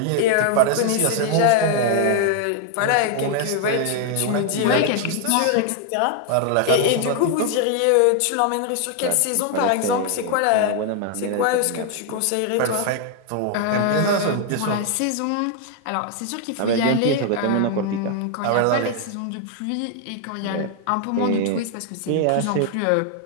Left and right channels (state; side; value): different; both; correlation 0.00